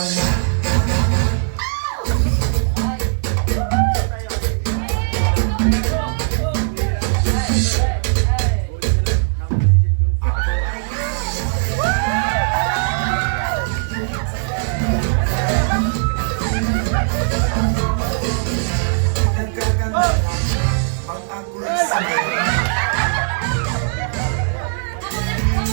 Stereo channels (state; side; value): silent; left; 64 dB below the other